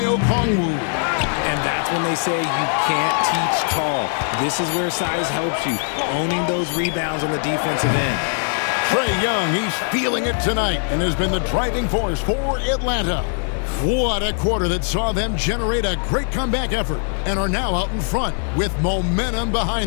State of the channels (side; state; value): right; silent; digital silence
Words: Okongwu. And that's when they say you can't teach tall. This is where size helps you, owning those rebounds on the defensive end. Trae Young, he's feeling it tonight and has been the driving force for Atlanta. What a quarter that saw them generate a great comeback effort and are now out in front with momentum